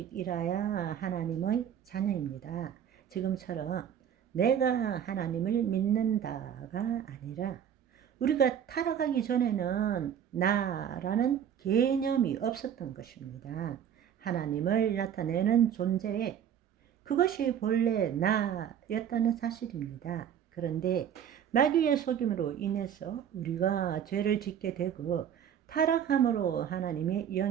하나님의 자녀입니다. 지금처럼 내가 하나님을 믿는다가 아니라 우리가 타락하기 전에는 나라는 개념이 없었던 것입니다. 하나님을 나타내는 존재에 그것이 본래 나였다는 사실입니다. 그런데 마귀의 속임으로 인해서 우리가 죄를 짓게 되고 타락함으로 하나님의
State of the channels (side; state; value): left; quieter; 9.0 dB